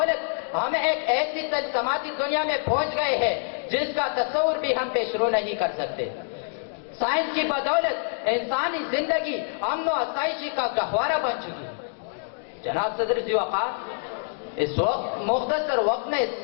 ہم ایک ایسی تجسماتی دنیا میں پہنچ گئے ہیں جس کا تصور بھی ہم پیش رو نہیں کر سکتے۔ سائنس کی بدولت انسانی زندگی امن و آسائشی کا گہوارہ بن چکی ہے۔ جناب صدر ذی وقار، اس وقت مختصر وقت میں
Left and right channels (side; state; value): right; silent; digital silence